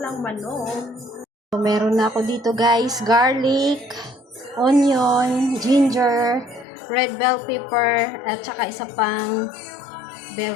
manok. So, meron na ako dito guys, garlic, onion, ginger, red bell pepper, at saka isa pang bell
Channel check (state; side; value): drops out; right; at 6.7 s